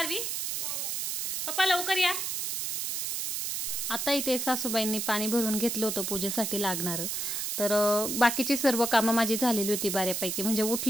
पप्पा लवकर या. आता इथे सासूबाईंनी पाणी भरून घेतलं होतं पूजेसाठी लागणारं. तर बाकीची सर्व कामं माझी झालेली होती बऱ्यापैकी. म्हणजे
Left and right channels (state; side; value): noise; right; hiss, 2 dB below the sound